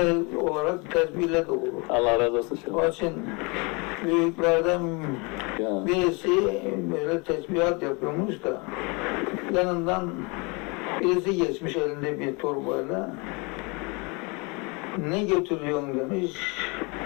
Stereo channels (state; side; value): quieter; right; 29.6 dB